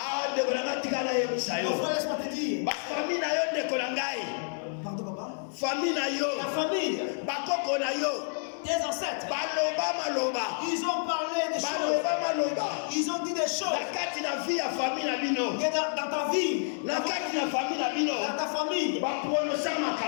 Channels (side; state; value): right; silent; 58 dB below the other